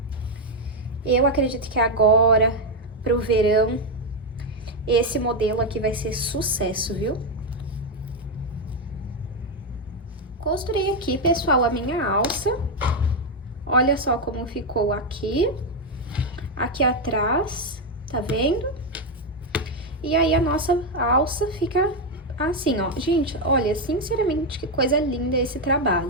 Eu acredito que agora, pro verão, esse modelo aqui vai ser sucesso, viu? Costurei aqui, pessoal, a minha alça. Olha só como ficou aqui atrás, tá vendo? E aí, a nossa alça fica assim, ó. Gente, olha, sinceramente, que coisa linda esse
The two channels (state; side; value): normal; both; correlation 0.04